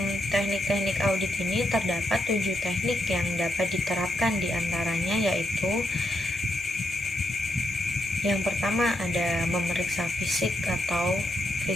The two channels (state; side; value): normal; both; correlation 0.81